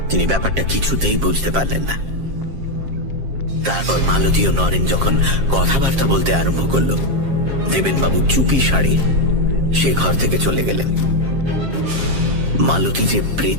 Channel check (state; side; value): late; left; 7.5 ms